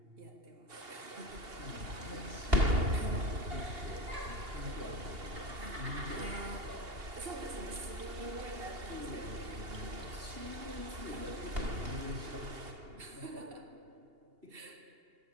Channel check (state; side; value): late; left; 2.8 ms